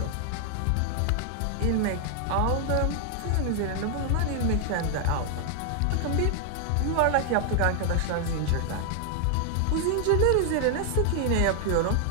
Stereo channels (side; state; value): both; different; correlation 0.00